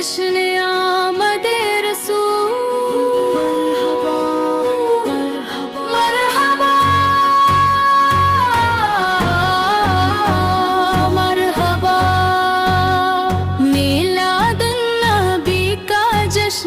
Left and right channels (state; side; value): identical; both; correlation 1.00